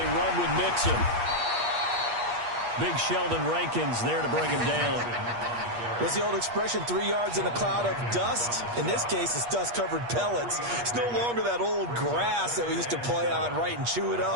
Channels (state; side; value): late; left; 8.4 ms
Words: run with Mixon. Big Sheldon Rankins there to bring him down. What's the old expression, 3 yards in a cloud of dust? In this case, it's dust-covered pellets. It's no longer that old grass that we used to play on, right, and chew it